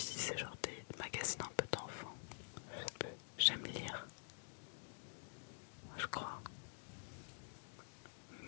c'est genre des magazines un peu d'enfants. Je sais plus. J'aime lire. Je crois.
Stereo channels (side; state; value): right; silent; digital silence